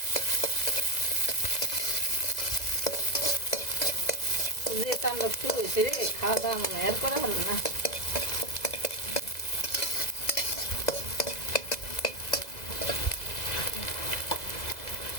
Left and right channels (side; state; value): right; late; 2.0 ms